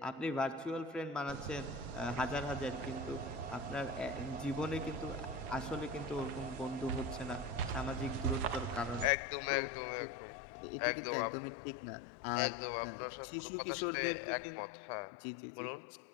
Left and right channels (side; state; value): right; drops out; at 9.1 s